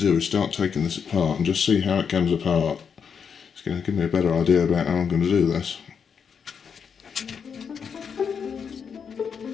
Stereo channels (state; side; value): quieter; right; 6.7 dB